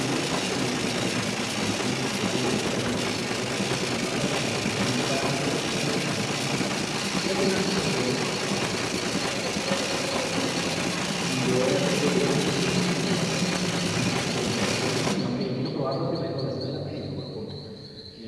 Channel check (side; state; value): both; identical; correlation 1.00